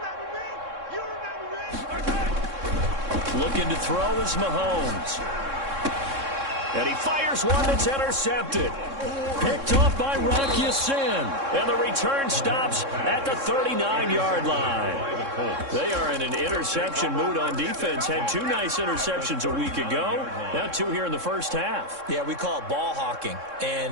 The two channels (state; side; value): late; left; 3.6 ms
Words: me? Looking to throw is Mahomes. And he fires one that's intercepted. Picked off by Rock Ya-Sin. And the return stops at the 39-yard line. They are in an interception mood on defense. Had 2 nice interceptions a week ago. Now 2 here in the first half. Yeah, we call it ball hawking.